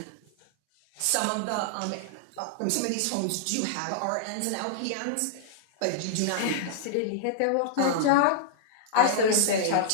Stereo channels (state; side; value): different; both; correlation -0.01